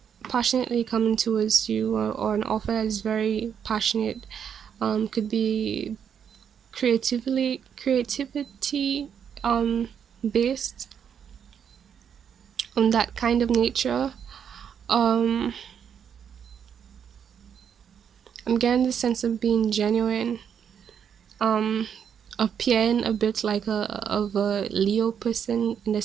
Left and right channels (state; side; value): quieter; left; 8.0 dB